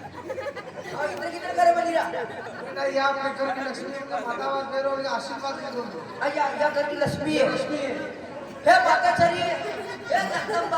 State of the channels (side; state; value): both; identical; correlation 1.00